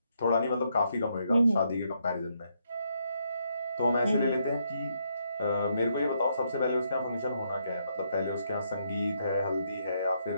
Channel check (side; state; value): both; inverted; correlation -0.76